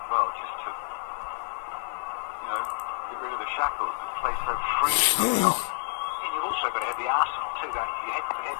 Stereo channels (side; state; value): right; silent; digital silence